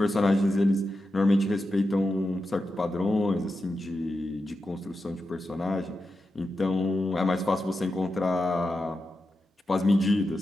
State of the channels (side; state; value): both; normal; correlation 0.89